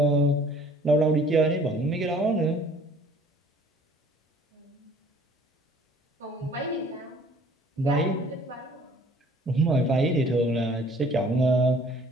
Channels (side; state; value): both; normal; correlation 0.54